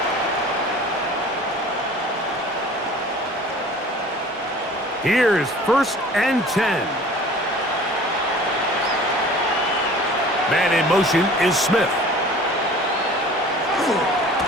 Here's first and 10. Man in motion is Smith.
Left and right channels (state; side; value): normal; both; correlation 0.46